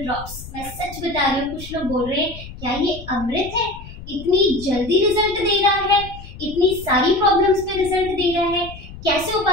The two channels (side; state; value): left; noise; rumble, 14 dB below the sound